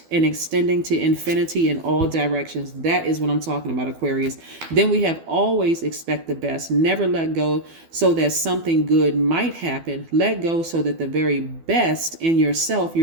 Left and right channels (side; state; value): left; late; 12 ms